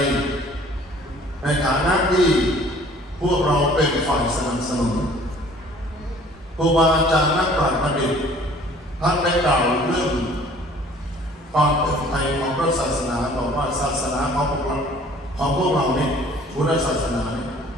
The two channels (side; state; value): both; normal; correlation 0.53